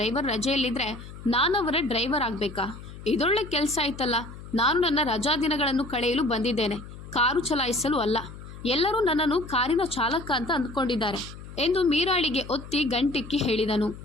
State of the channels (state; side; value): noise; left; hum, 14 dB below the sound